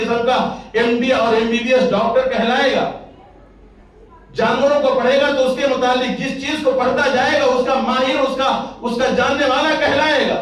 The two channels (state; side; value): identical; both; correlation 1.00